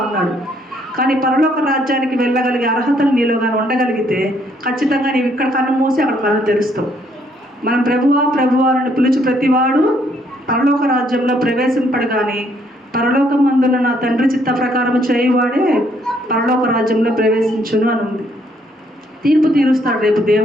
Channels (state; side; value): normal; both; correlation 0.68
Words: ఉన్నాడు. కానీ పరలోక రాజ్యానికి వెళ్ళగలిగే అర్హతలు నీలో కానీ ఉండగలిగితే ఖచ్చితంగా నీవు ఇక్కడ కన్ను మూసి అక్కడ కళ్ళు తెరుస్తావు. మనం ప్రభువా ప్రభువా అని పిలిచి ప్రతివాడు పరలోక రాజ్యంలో ప్రవేశింపడు. కానీ పరలోకం అందున్న నా తండ్రి చిత్త ప్రకారం చేయువాడే పరలోక రాజ్యంలో ప్రవేశించును అని ఉంది. తీర్పు తీరుస్తాడు రేపు